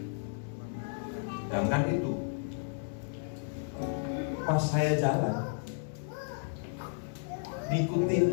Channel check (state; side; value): silent; right; digital silence